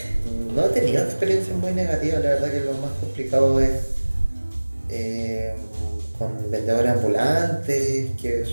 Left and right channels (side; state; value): both; inverted; correlation -1.00